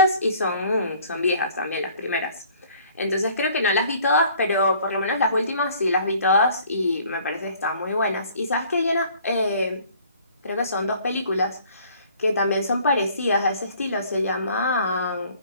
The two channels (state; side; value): inverted; both; correlation -0.55